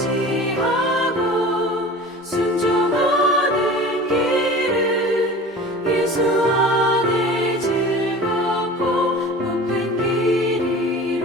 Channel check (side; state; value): both; normal; correlation 0.38